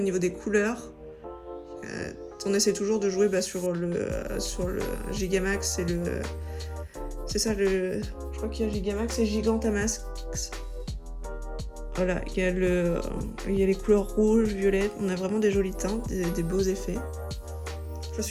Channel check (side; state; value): both; identical; correlation 1.00